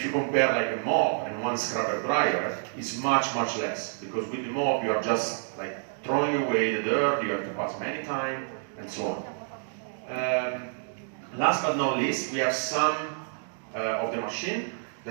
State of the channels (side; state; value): left; silent; digital silence